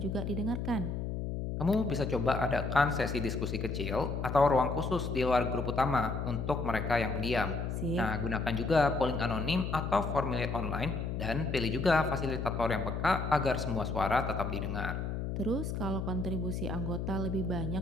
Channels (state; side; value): noise; left; hum, 3 dB below the sound